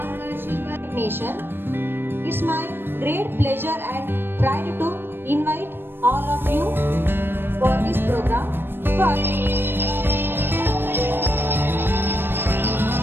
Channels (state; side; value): late; left; 0.10 ms